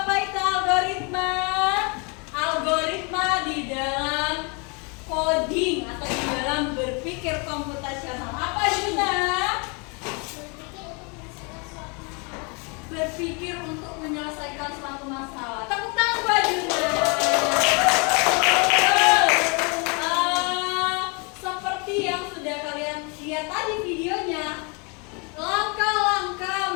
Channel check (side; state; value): right; quieter; 32.6 dB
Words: itu algoritma? Algoritma di dalam coding atau di dalam berpikir komputasional. Apa Juna? Berpikir untuk menyelesaikan suatu masalah. Tepuk tangan buat Juna. Seperti yang sudah kalian lihat tadi videonya,